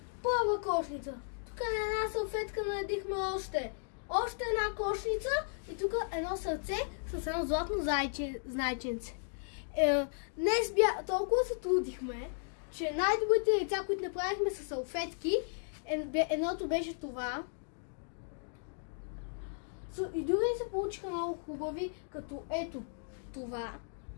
Първа кошница. Тук на една салфетка наредихме още една кошница и тук едно сърце с едно златно зайченце. Днес толкова се трудихме, че най-добрите яйца, които направихме с салфетки, едното беше това. И други се получиха много хубави, като ето това.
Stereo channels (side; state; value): right; silent; digital silence